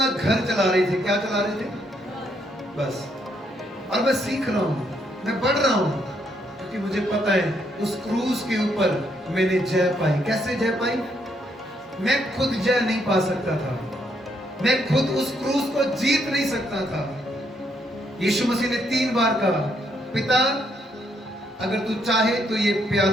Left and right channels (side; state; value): both; normal; correlation 0.74